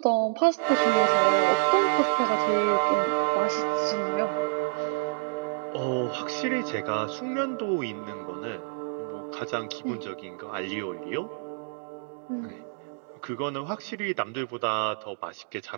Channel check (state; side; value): silent; left; digital silence